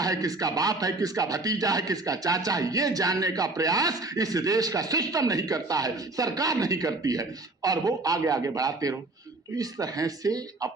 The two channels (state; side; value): quieter; left; 3.0 dB